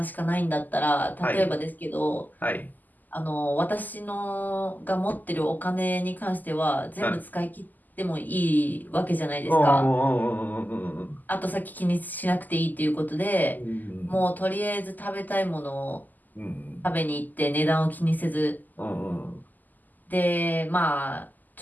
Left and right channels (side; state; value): right; late; 0.084 ms